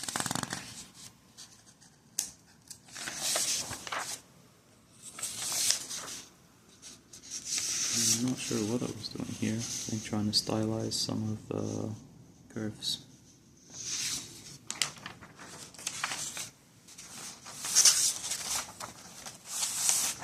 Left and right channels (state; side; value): identical; both; correlation 1.00